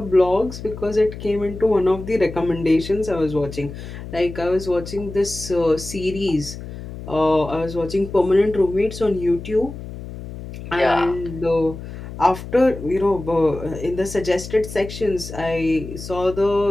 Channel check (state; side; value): noise; left; hum, 11 dB below the sound